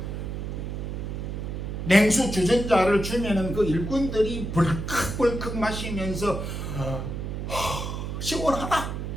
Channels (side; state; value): right; noise; hum, 5 dB below the sound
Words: 냉수 주전자를 주면은 그 일꾼들이 벌컥벌컥 마시면서 시원하다.